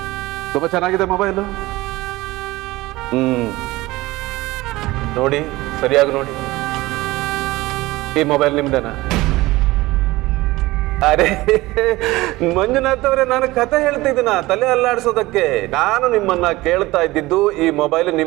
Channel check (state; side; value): quieter; left; 19.5 dB